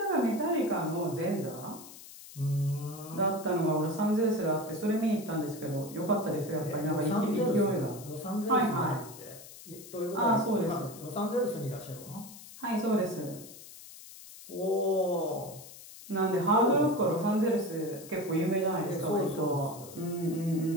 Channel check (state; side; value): noise; left; hiss, 17 dB below the sound